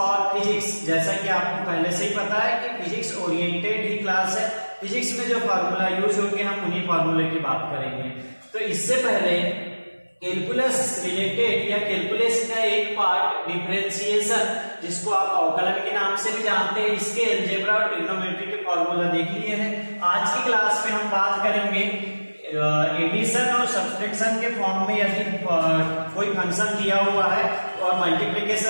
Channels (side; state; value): both; inverted; correlation -1.00